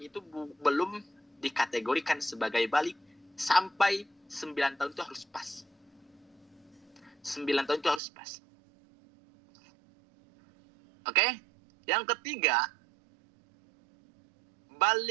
itu belum dikategorikan sebagai balik sampai 9 tahun itu harus pas. 9 tahun itu harus pas. Oke? Yang ketiga,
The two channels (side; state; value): left; drops out; at 8.0 s